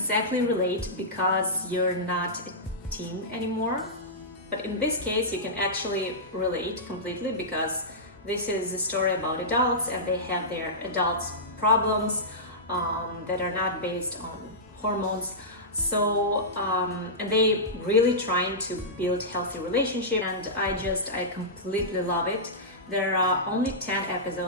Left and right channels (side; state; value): both; normal; correlation -0.15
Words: relate because you're not a teen anymore. But in this case, you can actually relate completely because this is a story about adults and they have their adults problems that are not based on hormones. So and they really trying to build healthy relationship, and I completely love it. There are only 10